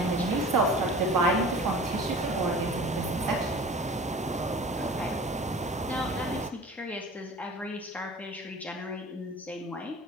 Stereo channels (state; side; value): normal; both; correlation 0.40